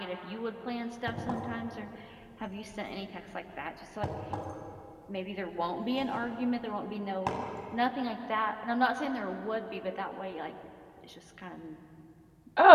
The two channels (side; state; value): both; identical; correlation 1.00